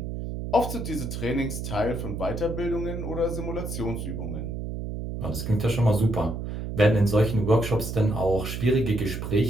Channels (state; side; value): noise; right; hum, 5 dB below the sound